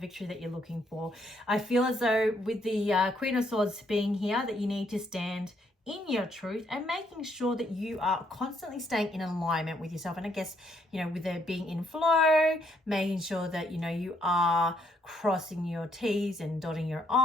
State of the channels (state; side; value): normal; both; correlation 0.72